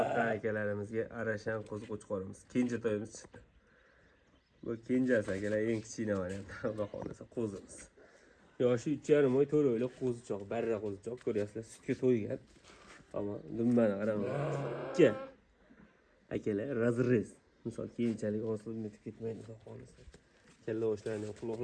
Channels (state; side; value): identical; both; correlation 1.00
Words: akalarimizga arashan qo'zi qo'chqorimiz. Kenja to'yimiz chiqdi. Bu kenjasi akalar, eng kichkina variant. Xudo xolasa qo'zimiz. Yoshi 3,5 oy, 4 oylik qo'zichoq, barra qo'zichoq ko'ryapsizlar, sutga to'ygan. Ammo dumbani qaranglar. Ikki akalar razrez. Misol keyinchalik osilib netib ketmaydi xudo xolasa. Kalla oshlarini,